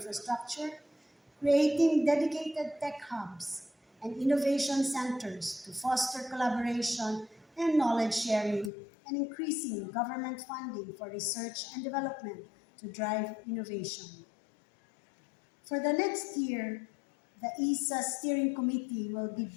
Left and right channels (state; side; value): drops out; right; at 8.7 s